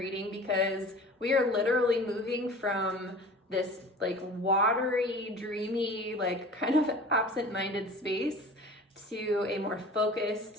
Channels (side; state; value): both; normal; correlation 0.41